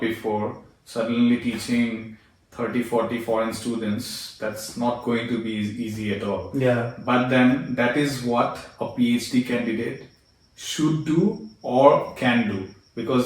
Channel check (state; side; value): identical; both; correlation 1.00